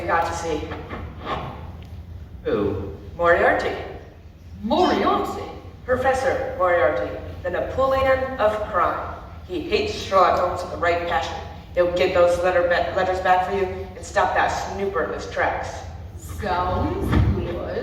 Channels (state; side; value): identical; both; correlation 1.00